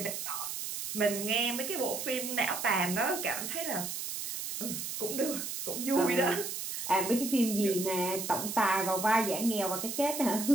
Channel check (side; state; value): right; noise; hiss, 5 dB below the sound